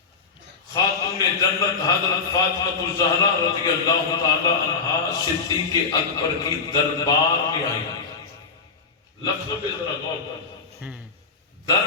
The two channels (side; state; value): right; quieter; 5.1 dB